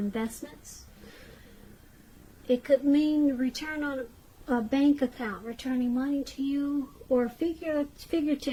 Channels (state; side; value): identical; both; correlation 1.00